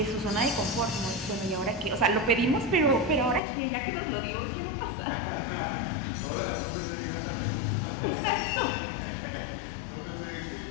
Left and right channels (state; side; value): drops out; right; at 3.4 s